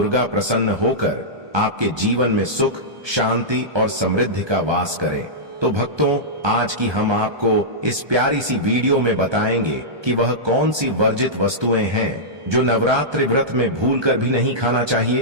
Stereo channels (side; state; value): left; late; 1.2 ms